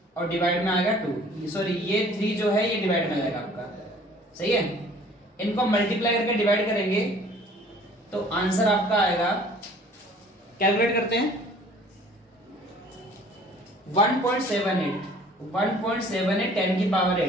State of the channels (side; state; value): both; normal; correlation 0.52